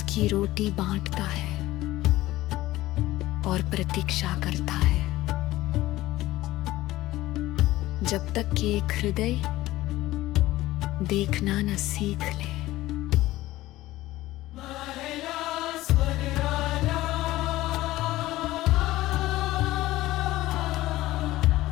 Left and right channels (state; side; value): quieter; right; 16.8 dB